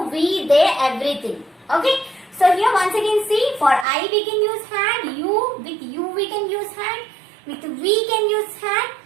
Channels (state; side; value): drops out; left; at 3.9 s